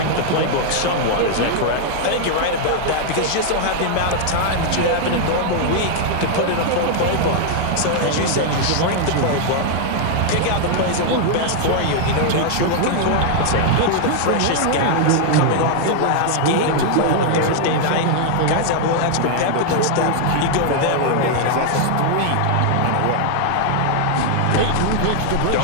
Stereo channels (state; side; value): different; both; correlation 0.00